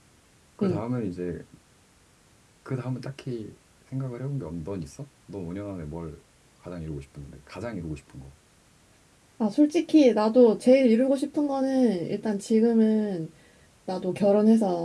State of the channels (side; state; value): both; identical; correlation 1.00